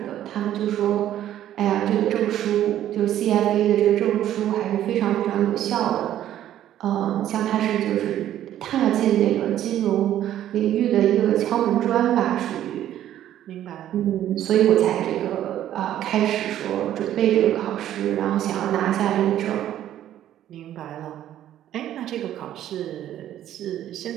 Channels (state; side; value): quieter; left; 11.9 dB